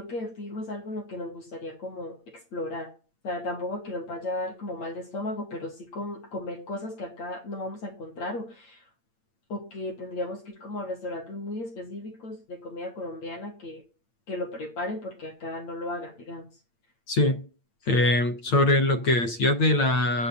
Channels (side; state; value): right; late; 8.8 ms